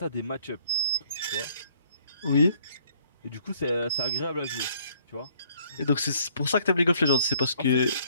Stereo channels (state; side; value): inverted; both; correlation -0.62